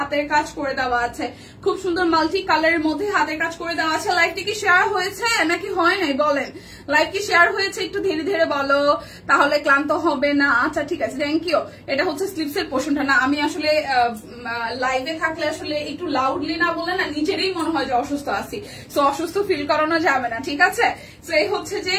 কাজ করে দেওয়া আছে খুব সুন্দর মাল্টি কালারের মধ্যে হাতের কাজ করে দেওয়া আছে লাইভটি কি শেয়ার হয়েছে নাকি হয় নাই বলেন লাইভ কি শেয়ার হয়েছে একটু ধীরে ধীরে বলো তাহলে ক্লান্ত হবে না আচ্ছা ঠিক আছে থ্যাংক ইউ এটা হচ্ছে স্লিপসের পোর্শনটা না আমি আসলে লাইভে থাকলে আসলে একটু লাউডলি না বলে না নিজেরই মনে হয় যে অসুস্থ আছি সো অসুস্থ ফিল করানো যাবে না ঠিক আছে সো এই হচ্ছে যে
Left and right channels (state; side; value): identical; both; correlation 1.00